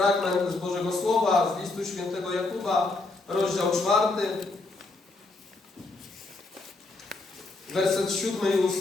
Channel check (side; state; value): right; quieter; 3.3 dB